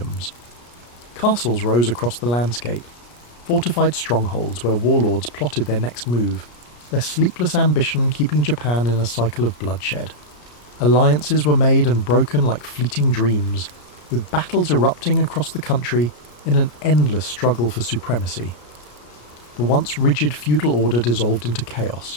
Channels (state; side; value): late; right; 34 ms